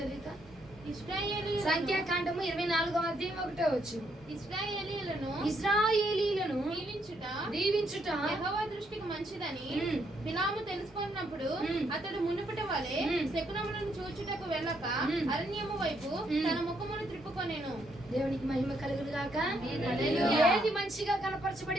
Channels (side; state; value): both; normal; correlation 0.74